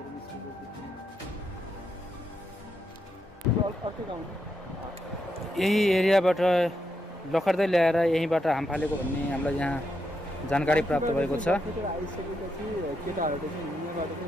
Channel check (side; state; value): both; normal; correlation 0.82